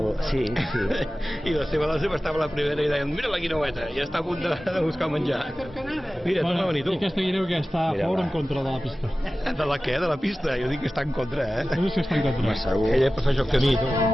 Sí. I la seva dona sempre estava la primera i deien, mira la guineueta, ja està a punt de buscar menjar. Mira, Bueno, no venir tu. I aquesta guineu que està a favor o en contra de la pista? De la què? De la pista? Jo dic que està en contra, Tu dius que està en contra. Segur. Ella prefereix el camí,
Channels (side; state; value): both; normal; correlation 0.96